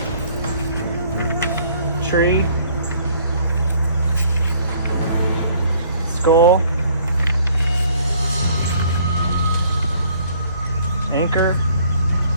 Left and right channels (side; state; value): both; inverted; correlation -0.60